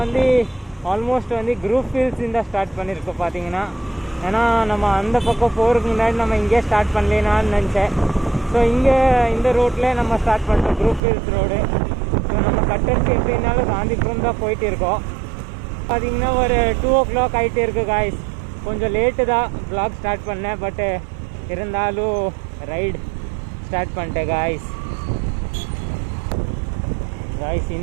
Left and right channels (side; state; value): left; drops out; at 11.0 s